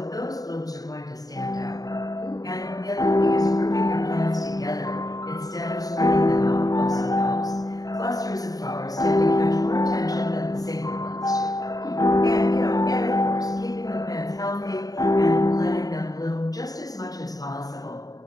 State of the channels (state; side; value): late; right; 0.18 ms